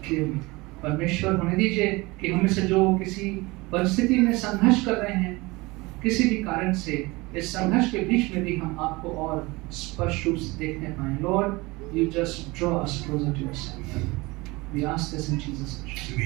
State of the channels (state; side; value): quieter; left; 23.1 dB